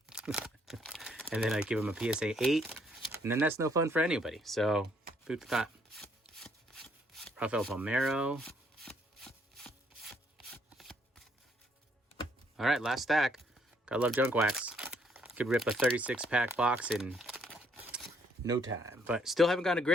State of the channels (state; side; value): normal; both; correlation 0.69